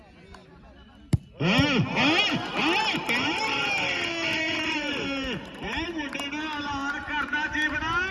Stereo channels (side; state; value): both; identical; correlation 1.00